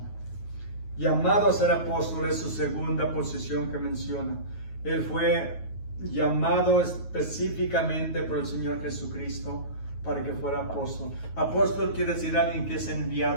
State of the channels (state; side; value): late; right; 9.3 ms